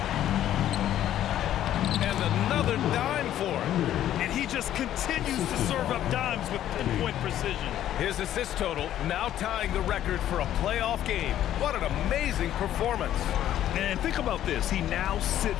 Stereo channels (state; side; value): quieter; right; 11.8 dB